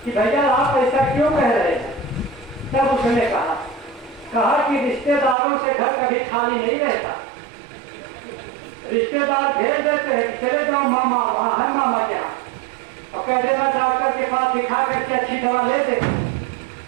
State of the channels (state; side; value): drops out; left; at 5.4 s